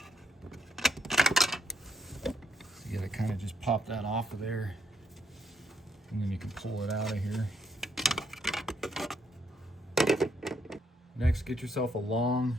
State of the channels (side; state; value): both; normal; correlation 0.74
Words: So you gotta kind of just pop that off of there. And then you can pull it out of here. Next, get yourself a long